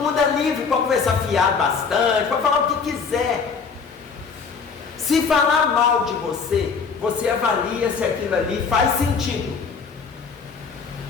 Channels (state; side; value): quieter; right; 5.5 dB